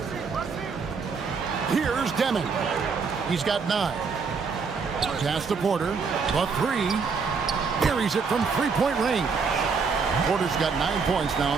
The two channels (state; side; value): quieter; left; 5.2 dB